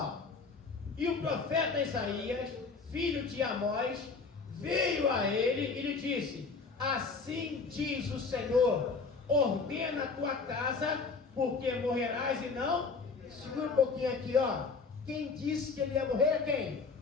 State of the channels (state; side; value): quieter; right; 4.6 dB